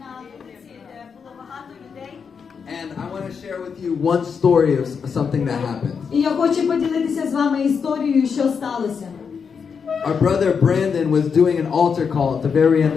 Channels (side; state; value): right; quieter; 6.2 dB